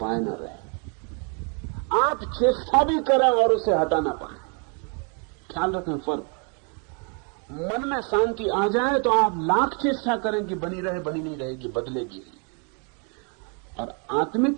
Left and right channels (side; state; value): left; quieter; 37.8 dB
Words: ना रहे। आप चेष्टा भी करें और उसे हटा ना पाए। ख्याल रखें फर्क। मन में शांति आ जाए तो आप लाख चेष्टा करें कि बनी रहे, बनी नहीं रहेगी, बदलेगी। और